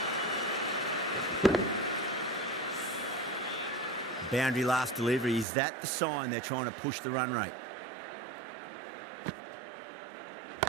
Boundary last delivery. Is that the sign they're trying to push the run rate?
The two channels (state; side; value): drops out; left; at 5.5 s